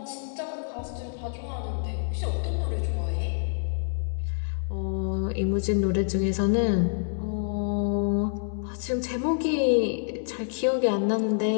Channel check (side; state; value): right; silent; digital silence